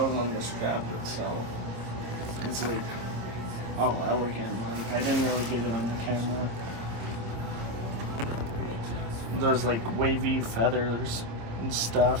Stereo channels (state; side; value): late; left; 26 ms